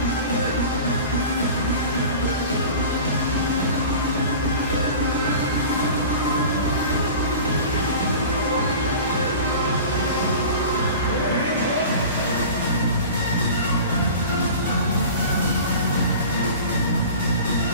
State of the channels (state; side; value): inverted; both; correlation -0.38